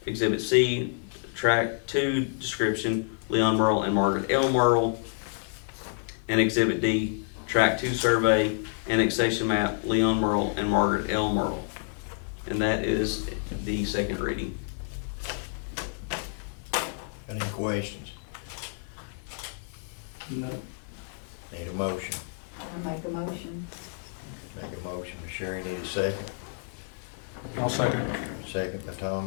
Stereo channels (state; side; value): silent; right; 59 dB below the other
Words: Exhibit C, Tract 2 description, Leon Merle and Margaret L. Merle. And Exhibit D, Tract 2 survey, annexation map, Leon Merle and Margaret L. Merle. And that is the second reading. Any questions? No. Need a motion? I make a motion. Make a motion, Ms. Sherry, need a second? I'll second. Second by